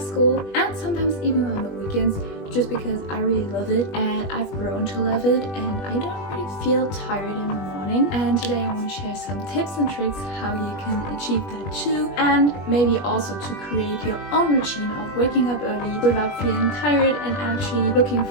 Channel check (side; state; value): right; late; 21 ms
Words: school, and sometimes even on the weekends, just because I really love it and I've grown to love it, and I don't really feel tired in the morning. And today I want to share some tips and tricks how you can achieve that too, and maybe also to create your own routine of waking up early without feeling tired and actually looking